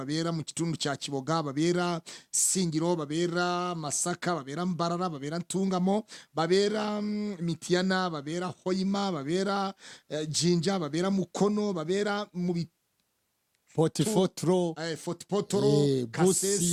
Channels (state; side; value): identical; both; correlation 1.00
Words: mu kitundu kya Kiboga, babera Singiro, babera Masaka, babera Mbarara, babera Ntungamo, babera Mitiana, babera Hoima, babera Jinja, babera Mukono, babera mu Potipotro Potipotro,